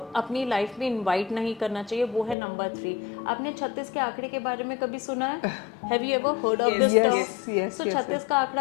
अपनी लाइफ में इन्वाइट नहीं करना चाहिए, वो है नंबर 3. आपने 36 के आंकड़े के बारे में कभी सुना है? Have you ever heard of this term? So 36 का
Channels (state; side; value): drops out; right; at 2.4 s